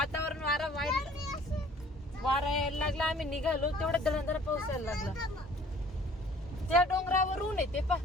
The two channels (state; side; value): normal; both; correlation 0.54